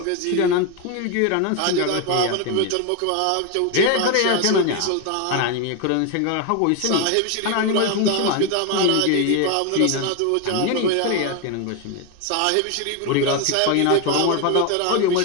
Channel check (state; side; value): different; both; correlation 0.02